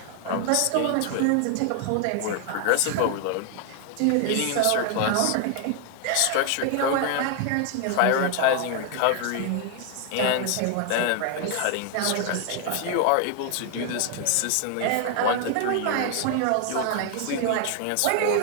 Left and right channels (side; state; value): both; different; correlation 0.00